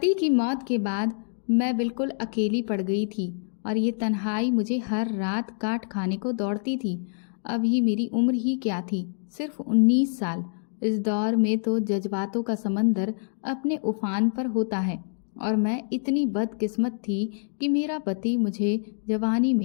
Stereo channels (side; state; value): right; silent; 61 dB below the other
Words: की मौत के बाद मैं बिल्कुल अकेली पड़ गई थी और ये तन्हाई मुझे हर रात काट खाने को दौड़ती थी। अभी मेरी उम्र ही क्या थी, सिर्फ 19 साल। इस दौर में तो जज्बातों का समंदर अपने उफान पर होता है और मैं इतनी बदकिस्मत थी कि मेरा पति मुझे जवानी